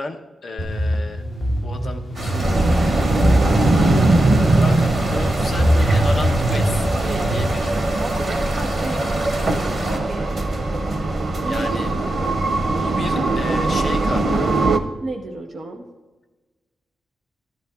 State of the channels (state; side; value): normal; both; correlation 0.89